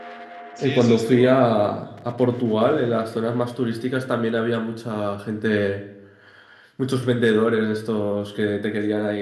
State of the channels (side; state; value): both; identical; correlation 1.00